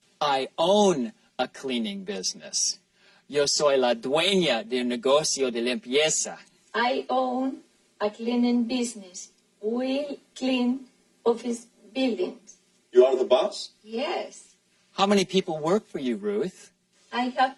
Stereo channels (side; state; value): both; identical; correlation 1.00